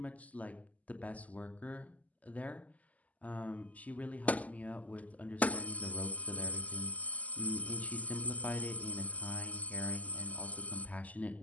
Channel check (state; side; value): late; right; 0.075 ms